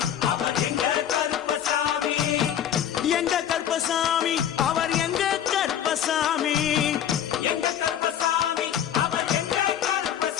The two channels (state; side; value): quieter; right; 10.0 dB